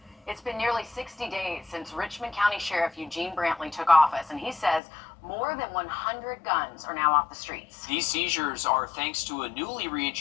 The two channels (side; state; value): right; drops out; at 4.8 s